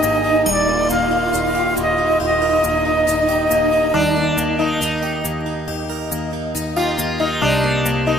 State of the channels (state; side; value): normal; both; correlation 0.67